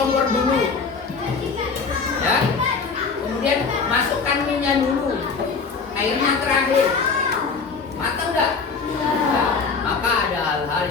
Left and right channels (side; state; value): right; quieter; 5.0 dB